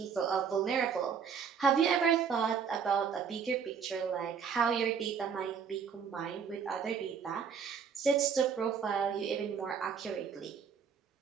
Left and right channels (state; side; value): quieter; left; 6.7 dB